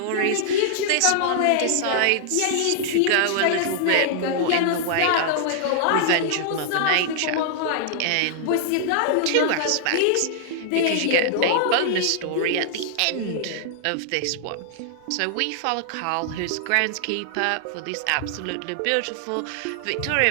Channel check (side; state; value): both; different; correlation -0.01